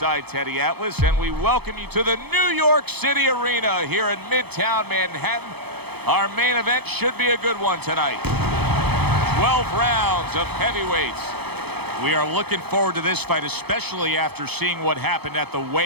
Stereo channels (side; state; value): left; late; 0.98 ms